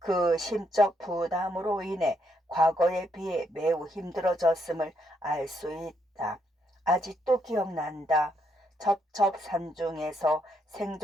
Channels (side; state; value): both; normal; correlation 0.76